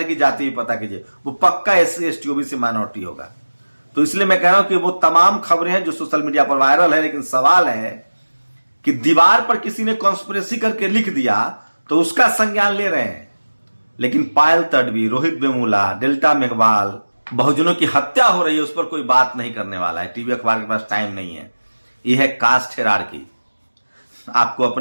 की जाति भी पता कीजिए, वो पक्का एससी एसटी ओबीसी माइनॉरिटी होगा। तो इसलिए मैं कह रहा हूं कि वो तमाम खबरें हैं जो सोशल मीडिया पर वायरल है। लेकिन सवाल है कि दीवार पर किसी ने कॉन्स्पिरेसी करके लिख दिया तो उसका संज्ञान ले रहे हैं, लेकिन पायल तडवी, रोहित वेमुला, डेल्टा मेघवाल, बहुजनों की हत्या हो रही है, उस पर कोई बात नहीं करने वाला है। टीवी अखबार के पास टाइम नहीं है। यह है कास्ट हिरार्की। आपको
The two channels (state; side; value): inverted; both; correlation -1.00